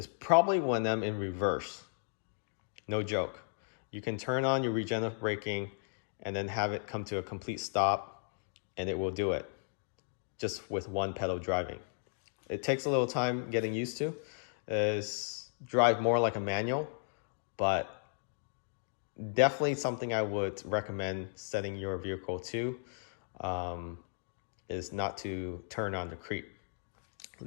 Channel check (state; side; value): silent; right; digital silence